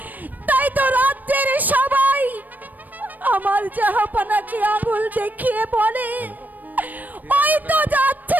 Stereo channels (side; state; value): left; late; 0.084 ms